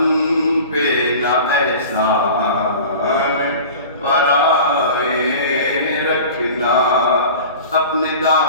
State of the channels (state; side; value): inverted; both; correlation -0.38